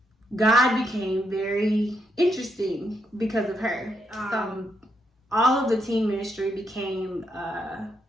God became very interesting because of her. So all of the teen ministry became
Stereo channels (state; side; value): normal; both; correlation 0.78